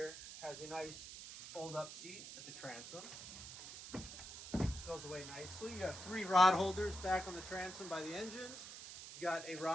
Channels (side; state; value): right; noise; hiss, 11 dB below the sound